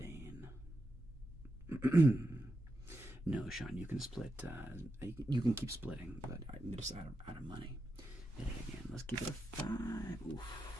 No, Sean, you can split. You can keep splitting, but I'm just out of money. Hit it again. Let's keep it a 5. Oof.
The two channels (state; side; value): normal; both; correlation 0.88